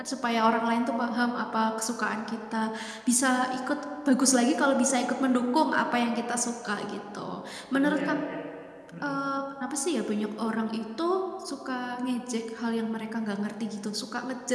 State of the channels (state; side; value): identical; both; correlation 1.00